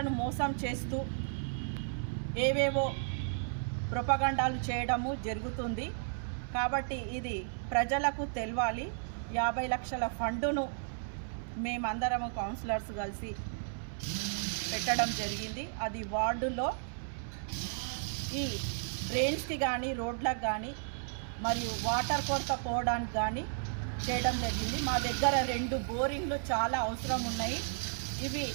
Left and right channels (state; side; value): silent; left; 55 dB below the other